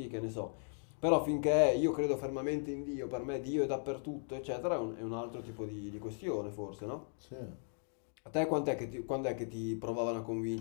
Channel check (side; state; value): right; silent; 53 dB below the other